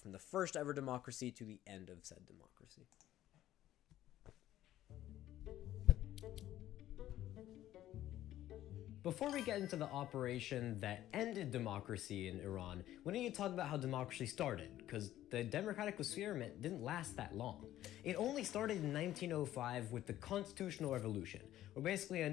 the first ever democracy to the end of said democracy. Before we get into the operation that ended democracy in Iran, we need to talk about how democracy started, because the democratic experiment didn't last that long. It only started in 1905 with the Constitutional Revolution, where basically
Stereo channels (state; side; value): quieter; right; 13.4 dB